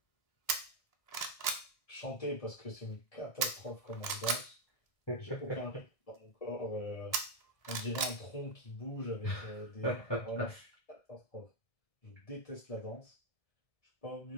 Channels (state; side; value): late; right; 1.7 ms